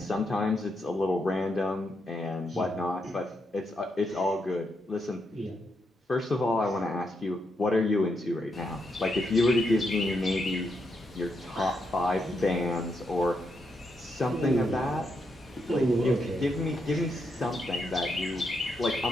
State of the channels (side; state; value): both; normal; correlation 0.81